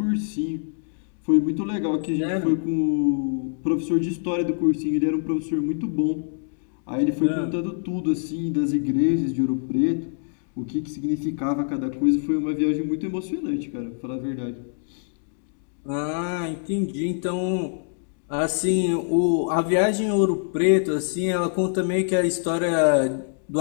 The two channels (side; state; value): right; silent; digital silence